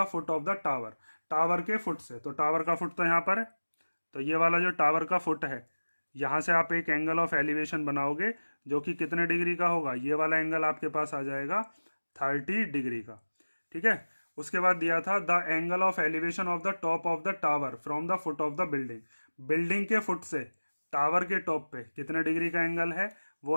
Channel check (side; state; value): both; inverted; correlation -1.00